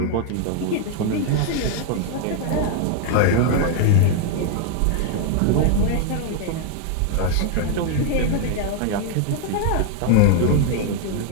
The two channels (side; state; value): both; different; correlation 0.00